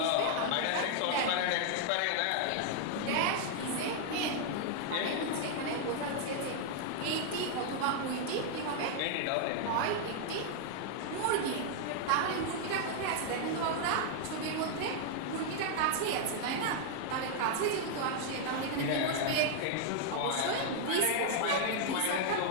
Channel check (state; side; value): different; both; correlation -0.01